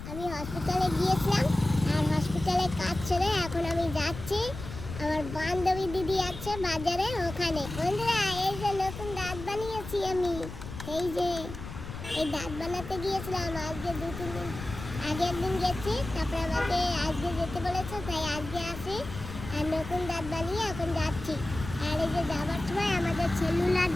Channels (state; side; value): noise; left; rumble, 10 dB below the sound